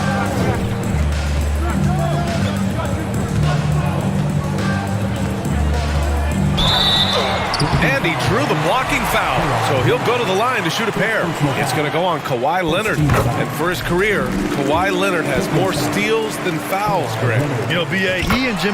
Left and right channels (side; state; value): both; identical; correlation 1.00